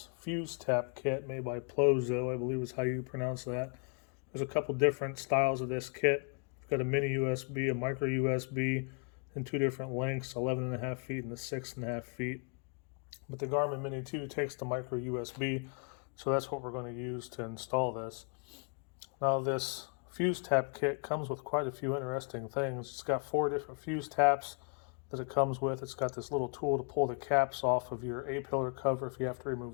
fuse tap kit made by Plozo, I believe is how you pronounce that. There's a couple different styles of this kit. We've got a mini USB, a micro USB, in two different lengths, 11.5 feet and a 6.5 feet. But the Garmin Mini 2 takes the micro USB, so that's what we're going to use to install this. Now this fuse tap kit comes with quite a few interesting things. It's got 4 different fuse taps that it comes with. It's got this little tool to pull the caps off of your A-pillar cover if you have to remove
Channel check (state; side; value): quieter; right; 39.1 dB